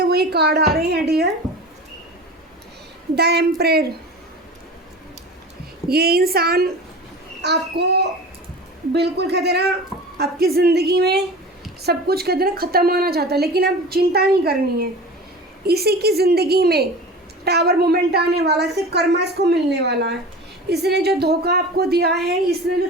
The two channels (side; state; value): both; normal; correlation 0.35